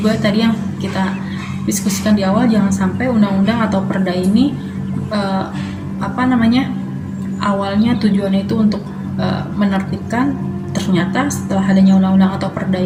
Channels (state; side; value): identical; both; correlation 1.00